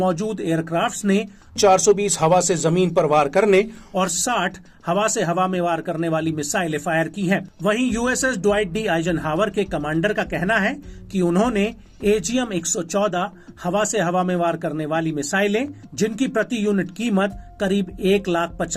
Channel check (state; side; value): identical; both; correlation 1.00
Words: एयरक्राफ्ट्स ने 420 हवा से जमीन पर वार करने और 60 हवा से हवा में वार करने वाली मिसाइलें फायर की हैं। वहीं USS ड्वाइट डी आइजनहावर के कमांडर का कहना है कि उन्होंने AGM-114 हवा से हवा में वार करने वाली मिसाइलें, जिनकी प्रति यूनिट कीमत करीब